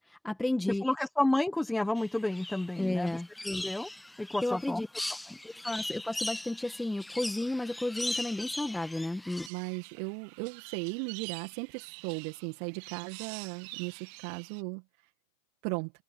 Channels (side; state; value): left; drops out; at 9.5 s